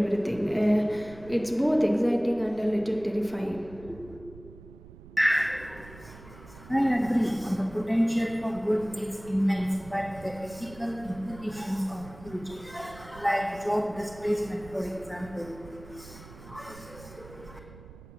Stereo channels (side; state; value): right; noise; rumble, 18 dB below the sound